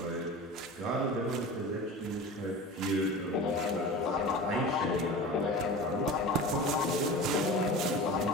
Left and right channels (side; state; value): both; normal; correlation 0.34